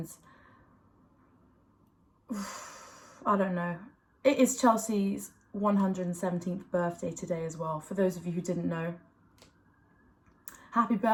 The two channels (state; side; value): identical; both; correlation 1.00